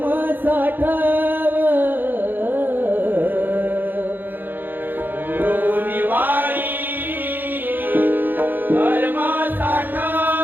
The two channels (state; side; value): late; left; 0.091 ms